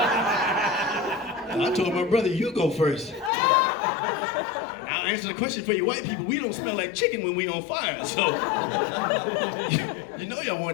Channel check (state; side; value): drops out; right; at 3.3 s